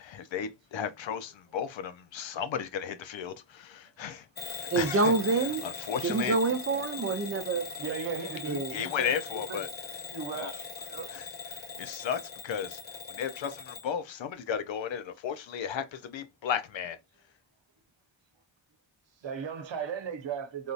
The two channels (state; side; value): normal; both; correlation -0.14